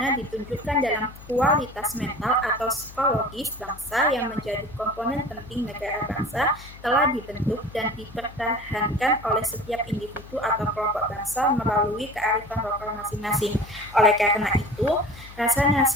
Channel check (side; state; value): left; noise; hum, 18 dB below the sound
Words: ditunjukkan dalam kualitas mental atau psikologis bangsa yang menjadi komponen penting negara bangsa telah dibentuk dan dipertahankan oleh setiap individu atau kelompok bangsa melalui kearifan lokal masing-masing. Oleh karena itu, rasa